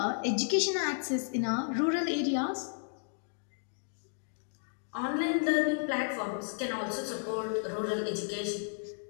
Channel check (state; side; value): silent; right; digital silence